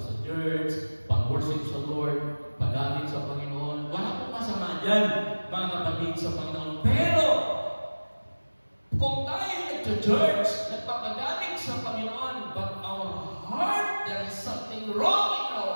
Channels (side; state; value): both; inverted; correlation -1.00